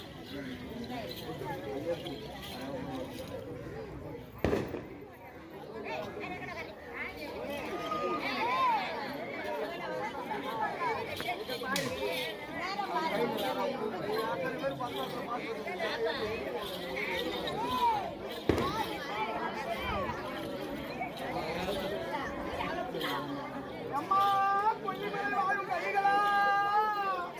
அம்மா கொஞ்சம் பேர் வாழும் கைகளா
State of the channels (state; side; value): identical; both; correlation 1.00